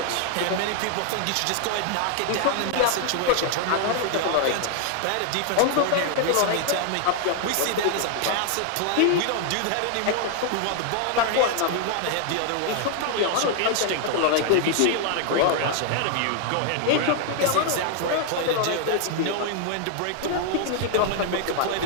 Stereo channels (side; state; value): both; different; correlation 0.00